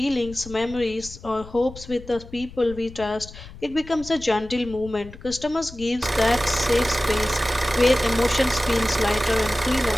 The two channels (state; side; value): noise; left; rumble, 16 dB below the sound